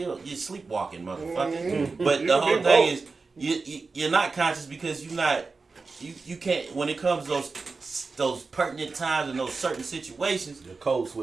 sleepwalking, motherfucker. But You the can whole be thing woke. is you're not conscious because you can't when it comes to those pertinent times and those certain situations. The code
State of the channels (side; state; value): left; quieter; 4.2 dB